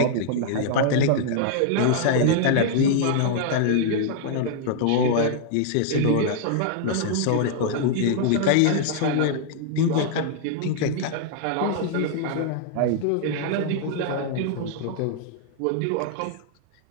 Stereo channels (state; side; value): different; both; correlation -0.01